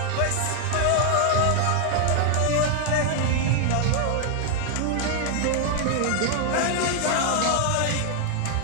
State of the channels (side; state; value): both; different; correlation 0.00